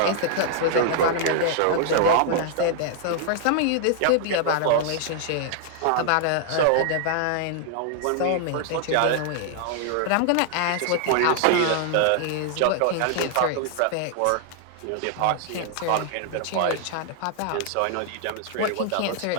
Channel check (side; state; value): both; different; correlation -0.01